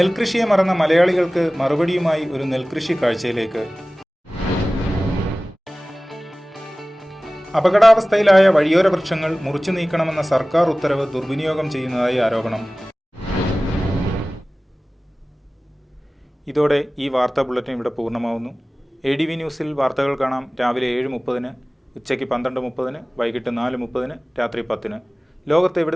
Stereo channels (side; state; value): both; normal; correlation 0.98